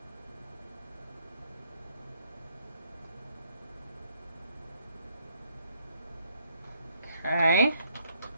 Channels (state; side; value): inverted; both; correlation -0.70